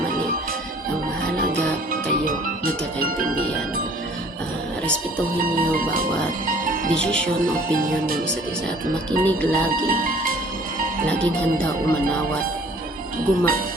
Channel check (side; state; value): both; normal; correlation 0.54